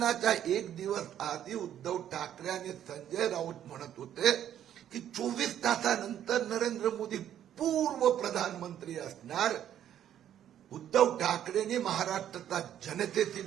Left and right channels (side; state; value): left; quieter; 10.6 dB